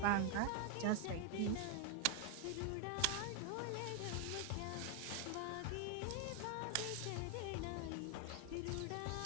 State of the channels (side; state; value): both; different; correlation 0.00